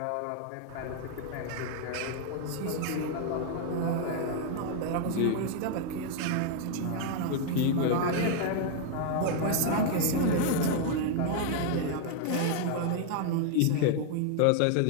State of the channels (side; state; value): both; different; correlation 0.00